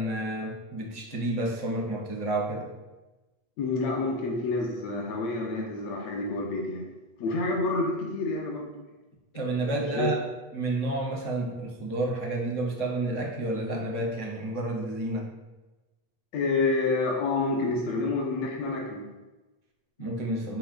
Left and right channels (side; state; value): right; late; 7.8 ms